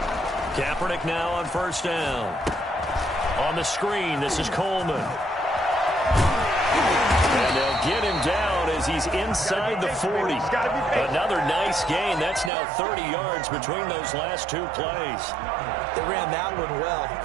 Kaepernick now on first down. On the screen, this is Coleman. And they'll get him down as he's inside the 40. Another nice gain. That's now 30 yards between those last two plays. They ran that one well,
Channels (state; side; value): drops out; left; at 12.5 s